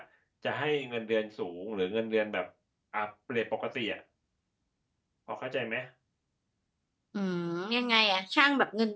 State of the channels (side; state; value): both; identical; correlation 1.00